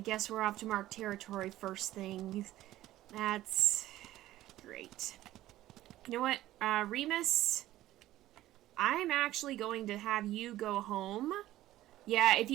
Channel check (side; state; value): left; quieter; 14.8 dB